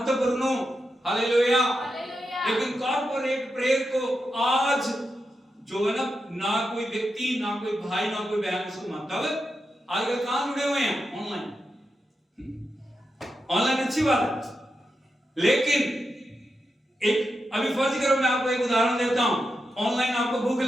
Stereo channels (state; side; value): normal; both; correlation 0.87